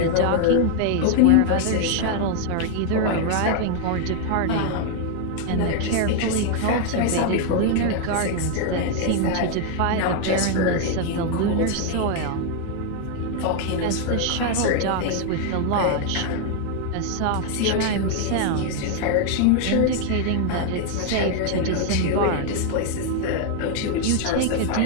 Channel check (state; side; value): different; both; correlation 0.00